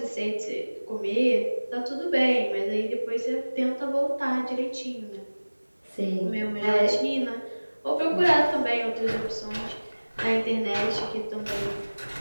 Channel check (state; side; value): inverted; both; correlation -1.00